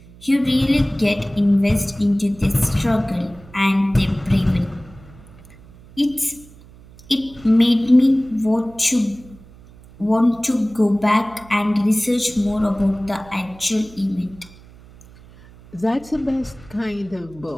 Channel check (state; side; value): noise; right; hum, 22 dB below the sound